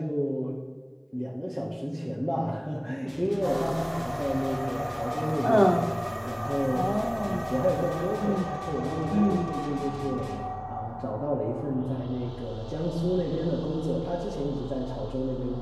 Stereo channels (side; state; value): both; identical; correlation 1.00